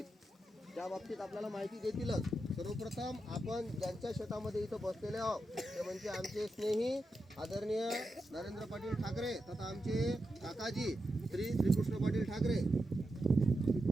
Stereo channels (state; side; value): normal; both; correlation 0.88